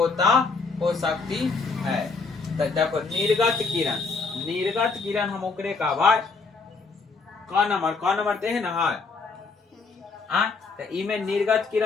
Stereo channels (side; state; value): right; quieter; 4.3 dB